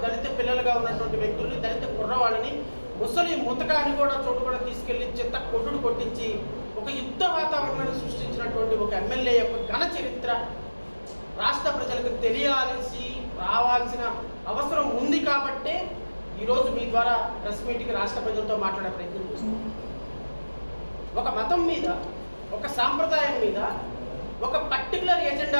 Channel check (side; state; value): both; inverted; correlation -1.00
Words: దళిత పిల్లలుగా ఉన్నటువంటి వ్యక్తుల్ని, దళిత కుర్రవాళ్ళని, ముసలి ముతకాన్ని కూడా చోటు కూడా తీసుకెళ్లి చిత్త కొట్టుడు కొట్టించి ఒక యుద్ధ వాతావరణాన్ని సృష్టించినటువంటి ఒక ఎమ్మెల్యే యొక్క ఘన చరిత్ర రాష్ట్ర ప్రజలకు తెలియాల్సి రావాల్సిన అవసరం ఉంది. కాబట్టే ఈరోజు మీ ద్వారా ప్రెస్ మీట్కి రాష్ట్ర ప్రజలతో మాట్లాడే ప్రయత్నం చేస్తున్నాం. ఒక మతం మీద, ఒక సాంప్రదాయం మీద ఒక పర్టికులర్